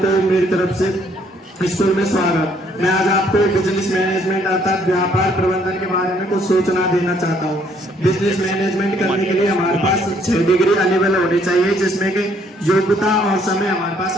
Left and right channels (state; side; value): normal; both; correlation 0.66